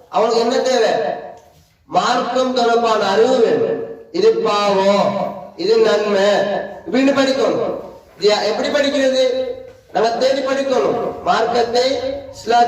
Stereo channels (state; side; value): identical; both; correlation 1.00